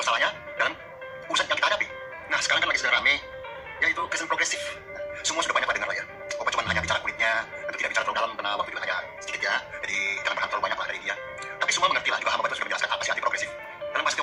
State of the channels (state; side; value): identical; both; correlation 1.00